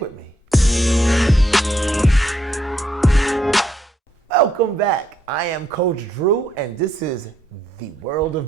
with me. Welcome back. I am Coach Drew, and this is the world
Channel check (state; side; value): normal; both; correlation 0.74